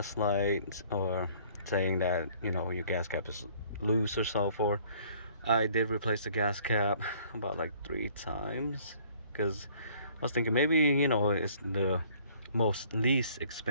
light or saying that your gas cap is loose or so forth, I did replace the gas cap about like 3 times because I was thinking maybe it's the least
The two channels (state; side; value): inverted; both; correlation -0.57